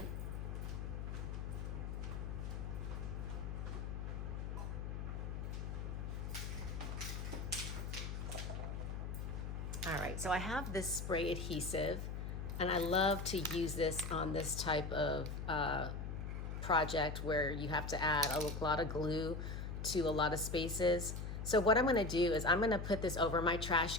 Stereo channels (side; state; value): left; noise; hum, 5 dB below the sound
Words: All right, so I have this spray adhesive, and I love to use this on this type of project where you have to add a lot of glue to a lot of spaces. So what I'm gonna do is I'm gonna put this over my trash